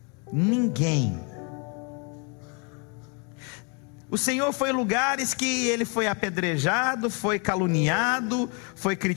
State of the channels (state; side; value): quieter; right; 34.0 dB